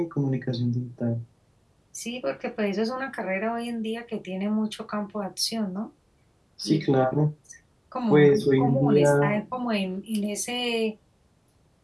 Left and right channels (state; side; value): identical; both; correlation 1.00